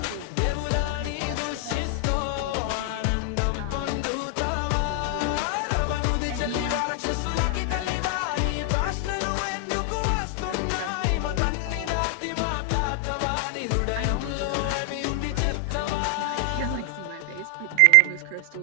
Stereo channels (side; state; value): both; different; correlation 0.00